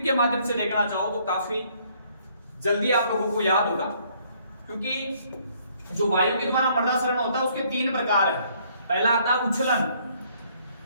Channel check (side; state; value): both; inverted; correlation -0.64